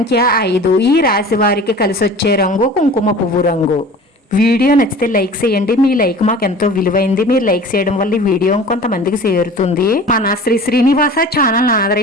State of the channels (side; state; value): both; normal; correlation 0.41